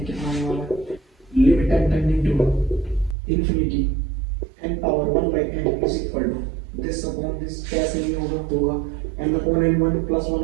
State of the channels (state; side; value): drops out; left; at 3.2 s